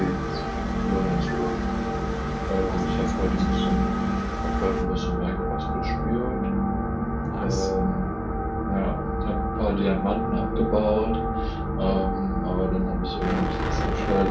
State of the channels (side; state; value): both; identical; correlation 1.00